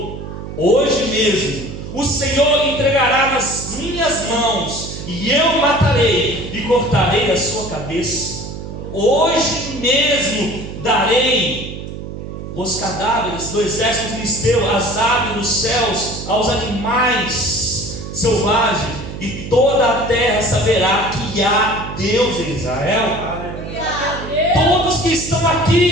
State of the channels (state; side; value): noise; right; hum, 9 dB below the sound